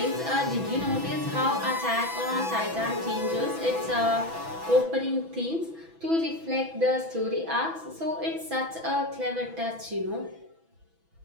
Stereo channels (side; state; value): left; late; 6.1 ms